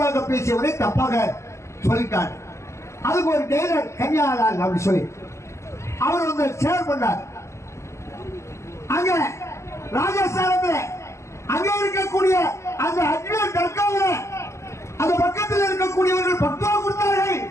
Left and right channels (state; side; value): late; right; 0.13 ms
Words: பேசியவரை தப்பாக சொல்லிட்டார். அதுக்கு ஒரு டெய்லர் கன்னியாலால் அப்படி சொல்லி அவர் வந்து ஷேர் பண்ணார். அங்க ராஜஸ்தானத்தில் அங்க இருக்கக்கூடிய அந்த அஜ்மீர் தர்காவில் அந்த பக்கத்தில் இருக்கக்கூடியவர்கள் பக்துவா கொடுத்தார்கள்.